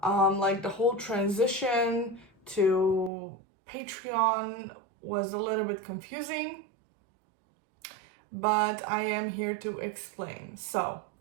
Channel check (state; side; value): drops out; left; at 3.1 s